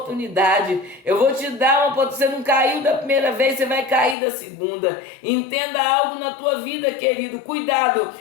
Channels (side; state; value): right; drops out; at 4.2 s